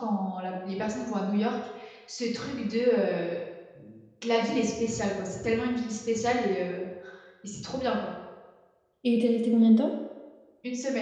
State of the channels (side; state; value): both; identical; correlation 1.00